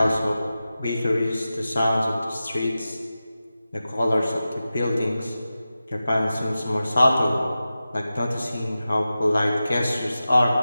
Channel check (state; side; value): inverted; both; correlation -0.94